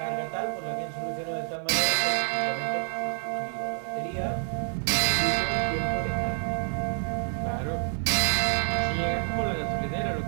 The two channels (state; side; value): silent; left; 59 dB below the other